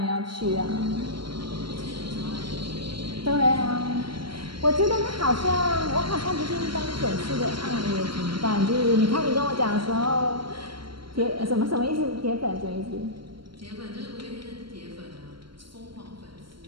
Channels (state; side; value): late; left; 0.73 ms